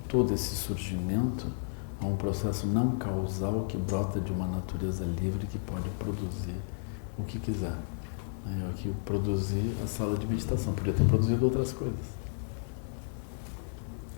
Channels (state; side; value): silent; right; 56 dB below the other